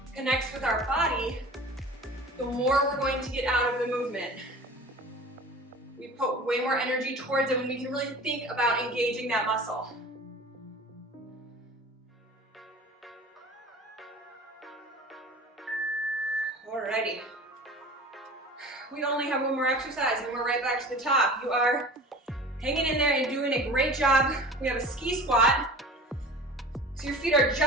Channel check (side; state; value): both; normal; correlation 0.39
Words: connects with our body, the more we're going to get out of the movement. We put way more energy towards it when we can really think about engaging that muscle. Alrighty. We only have one more exercise and we're right back to the top. You are hanging in there and doing a great job. We have a ski squat. So your feet are